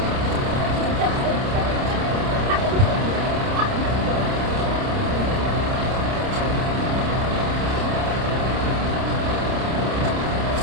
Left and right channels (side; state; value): left; late; 30 ms